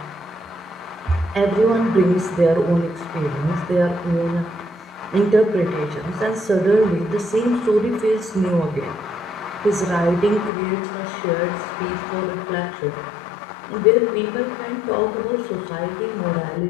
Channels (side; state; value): right; drops out; at 10.5 s